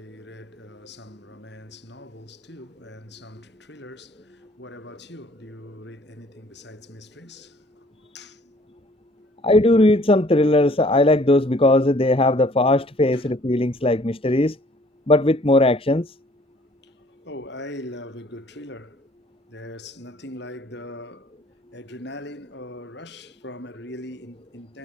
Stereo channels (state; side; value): normal; both; correlation 0.58